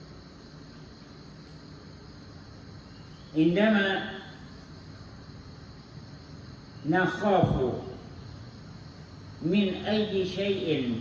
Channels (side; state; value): both; identical; correlation 1.00